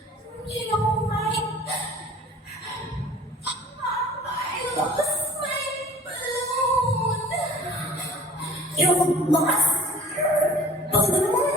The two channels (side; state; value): both; normal; correlation 0.48